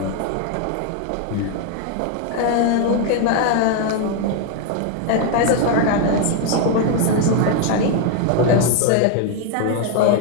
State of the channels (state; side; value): different; both; correlation 0.01